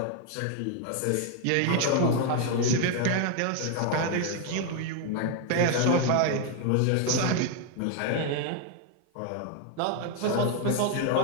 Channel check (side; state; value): both; different; correlation 0.00